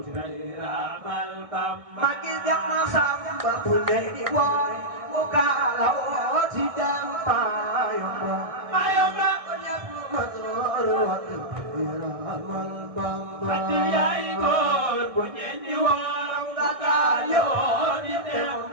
day raamal Bamba magi dem na Samba bu ne di woy mu kaalawoo ci dem Mayomba Mayomba ñépp musoon day raamal Bamba ati yaay góor bu ñeen di woor nga gaayoo di dem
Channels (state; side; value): late; left; 1.6 ms